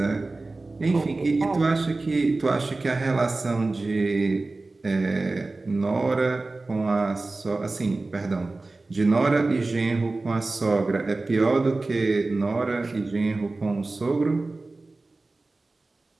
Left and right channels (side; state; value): left; quieter; 3.3 dB